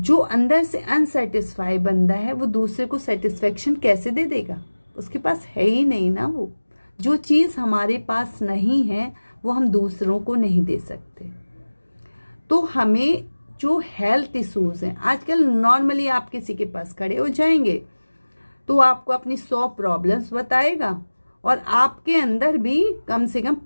अंदर से अनसेटिस्फाई बंदा है वो दूसरे को सेटिस्फेक्शन कैसे दे देगा, उसके पास है ही नहीं ना। वो जो चीज़ हमारे पास नहीं है वो हम दूसरों को नहीं दे सकते। तो हमें जो हेल्थ इश्यूज़ हैं आजकल, नॉर्मली आप किसी के पास खड़े हो जाएंगे तो आपको अपनी 100 प्रॉब्लम्स बताएगा और आपके अंदर भी कम से कम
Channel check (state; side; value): inverted; both; correlation -1.00